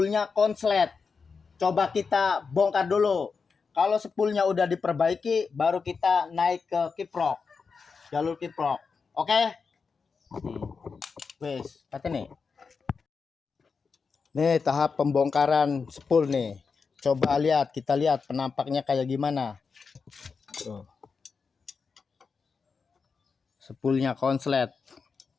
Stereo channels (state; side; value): quieter; right; 5.2 dB